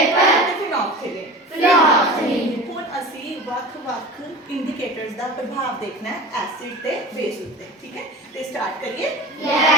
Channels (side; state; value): both; normal; correlation 0.34